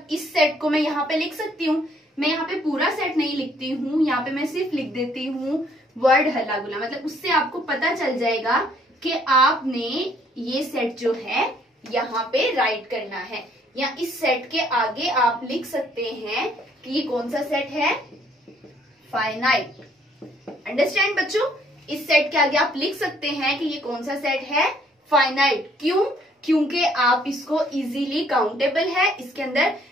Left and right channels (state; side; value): normal; both; correlation 0.64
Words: इस सेट को मैं यहाँ पे लिख सकती हूँ, मैं यहाँ पे पूरा सेट नहीं लिखती हूँ, यहाँ पे मैं सिर्फ लिख देती हूँ वर्ड हल्ला गुल्ला, मतलब उससे आपको पता चल जाएगा कि आपने ये सेट जो है यहाँ पे राइट करना है, या इस सेट के आगे आप लिख सकते हैं कि ये कौन सा सेट है? फाइनाइट। अंडरस्टैंड बच्चों? इस सेट के आगे आप लिख सकते हैं कि ये कौन सा सेट है? फाइनाइट। क्यों? क्योंकि आप इसको इजीली काउंटेबल है, इसके अंदर